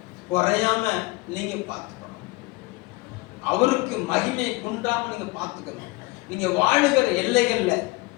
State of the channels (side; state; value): right; quieter; 23.3 dB